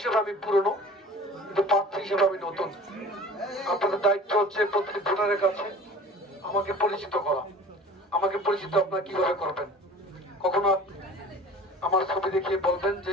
আমি পুরনো, কিন্তু প্রার্থী হিসেবে আমি নতুন। আপনাদের দায়িত্ব হচ্ছে প্রতিটি ভোটারের কাছে আমাকে পরিচিত করা। আমাকে পরিচিত আপনারা কিভাবে করবেন? কখনো আমার ছবি দেখিয়ে বলবেন যে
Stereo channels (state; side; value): normal; both; correlation 0.43